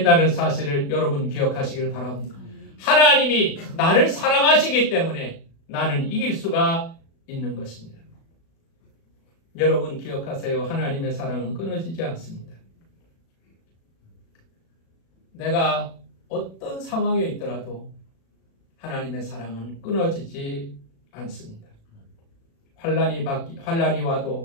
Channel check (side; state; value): right; late; 36 ms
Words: 사실을 여러분 기억하시길 바랍니다. 하나님이 나를 사랑하시기 때문에 나는 이길 수가 있는 것입니다. 여러분 기억하세요. 하나님의 사랑은 끊어지지 않습니다. 내가 어떤 상황에 있더라도 하나님의 사랑은 끊어지지 않습니다. 환란이